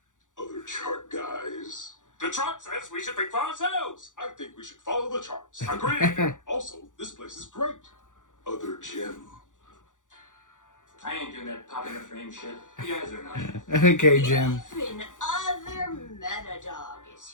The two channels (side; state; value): right; late; 0.87 ms